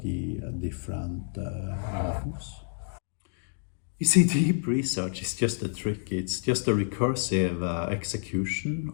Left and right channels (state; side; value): silent; right; digital silence